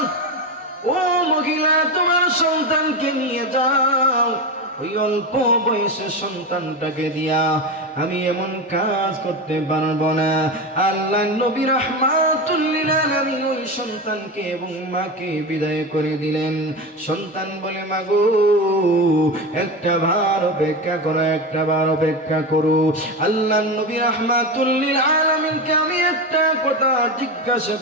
ও মহিলা তোমার সন্তানকে নিয়ে যাও। ওই অল্প বয়সের সন্তানটাকে দিয়া আমি এমন কাজ করতে পারবো না। আল্লাহ নবী রাহমাতুল লিল আলামিন ওই সন্তানকে এবং মাকে বিদায় করে দিলেন। সন্তান বলে, মাগো একটা বার অপেক্ষা করো, একটা বার অপেক্ষা করো। আল্লাহ নবী রাহমাতুল লিল আলামিনকে আমি একটা কথা জিজ্ঞাসা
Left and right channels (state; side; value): normal; both; correlation 0.19